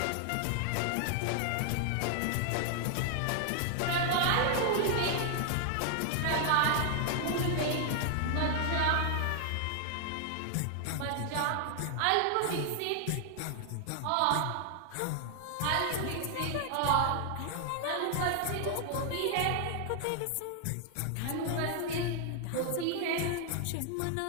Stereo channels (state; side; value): different; both; correlation 0.00